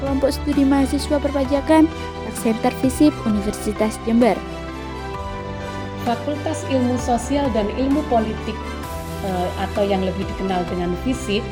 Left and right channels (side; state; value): both; identical; correlation 1.00